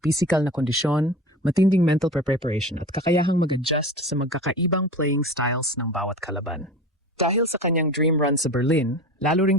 physical na kondisyon, matinding mental preparation at kakayahang mag-adjust sa magkakaibang playing styles ng bawat kalaban. Dahil sa kanyang dream run sa Berlin, lalo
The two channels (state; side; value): normal; both; correlation 0.34